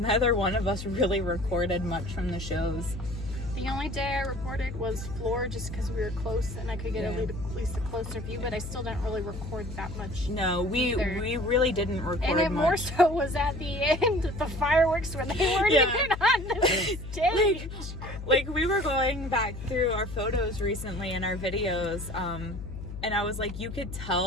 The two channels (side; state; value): left; noise; hum, 9 dB below the sound